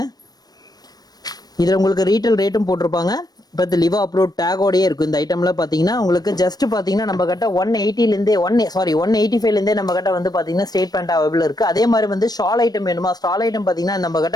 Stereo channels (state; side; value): late; right; 0.19 ms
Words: இதுல உங்களுக்கு ரீட்டைல் ரேட்டும் போட்டிருப்பாங்க, பட் லிவா அப்ரூவ் டேகோடயே இருக்கும். இந்த ஐட்டம்ல பாத்தீங்கன்னா உங்களுக்கு ஜஸ்ட் பாத்தீங்கன்னா நம்ம கிட்ட 180 ல இருந்தே 185 ல இருந்தே நம்ம கிட்ட வந்து பாத்தீங்கன்னா ஸ்ட்ரெயிட் பேண்ட் அவைலபிள் இருக்கு. அதே மாதிரி வந்து ஷால் ஐட்டம் வேணுமா, ஷால் ஐட்டம் பாத்தீங்கன்னா நம்ம